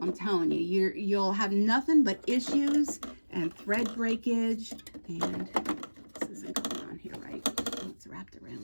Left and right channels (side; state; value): both; inverted; correlation -1.00